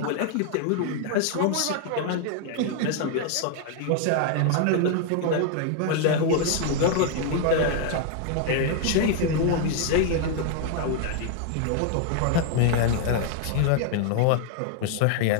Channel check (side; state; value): both; different; correlation 0.00